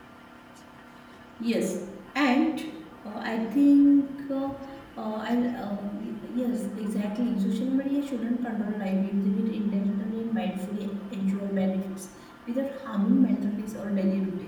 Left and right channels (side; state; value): both; identical; correlation 1.00